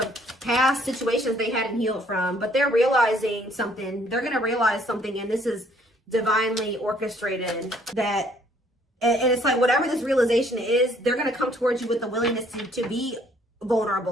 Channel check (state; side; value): normal; both; correlation 0.63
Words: past situations they hadn't healed from. But they're realizing something. They're going to realize something, and this is divinely orchestrated. And it's like whatever this realization is, they're going to come towards you with the willingness to be